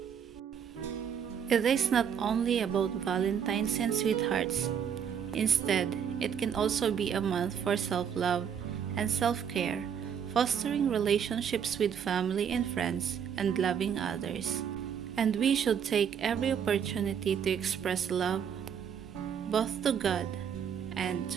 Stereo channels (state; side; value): quieter; left; 7.9 dB